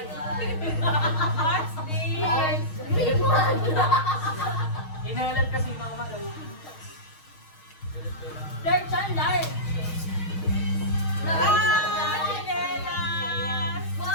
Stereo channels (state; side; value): late; right; 6.4 ms